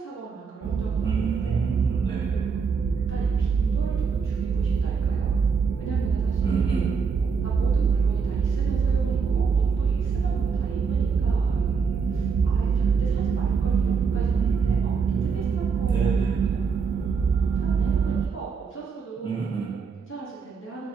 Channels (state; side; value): quieter; left; 5.7 dB